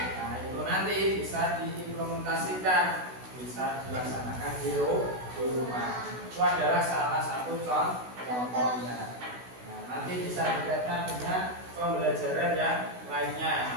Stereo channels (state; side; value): late; left; 16 ms